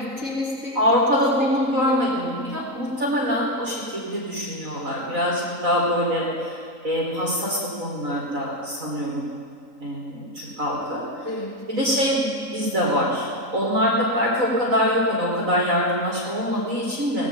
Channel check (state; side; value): late; left; 3.9 ms